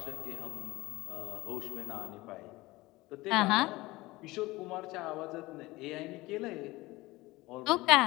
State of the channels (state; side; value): quieter; right; 20.2 dB